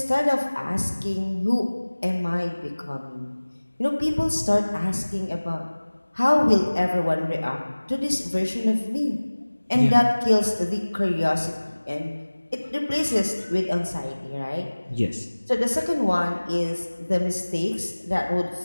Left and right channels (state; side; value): inverted; both; correlation -1.00